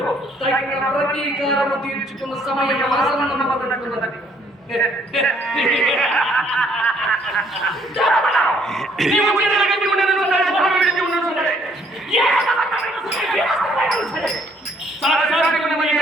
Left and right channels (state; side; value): normal; both; correlation 0.65